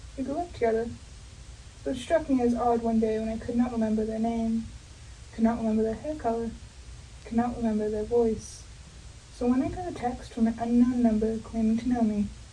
We grew up together, so it struck me as odd one day when I could not remember their name, could not remember their hair color, could not remember their voice. So when I got a text from an unknown number claiming to know me,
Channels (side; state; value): both; identical; correlation 1.00